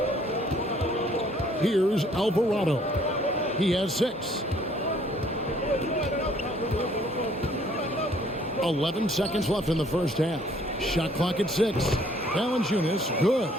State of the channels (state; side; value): normal; both; correlation 0.61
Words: Here's Alvarado. He has 6. 11 seconds left in the first half. Shot clock at 6. Valanciunas, good.